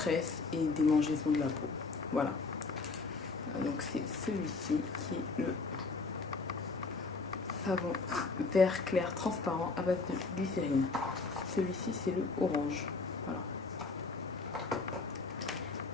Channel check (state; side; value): quieter; right; 4.0 dB